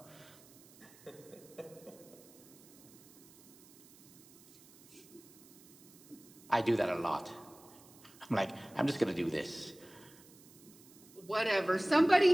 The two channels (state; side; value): noise; right; hiss, 23 dB below the sound